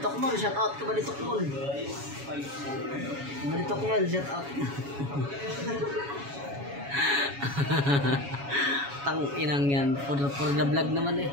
Mall, shout out ka Baditok Mall. Baditok Mall, shout out. Tang inang yan, for the vlog naman eh.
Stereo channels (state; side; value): late; left; 7.2 ms